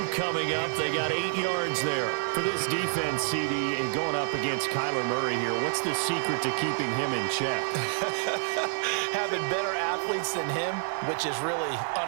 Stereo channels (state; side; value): silent; left; 57 dB below the other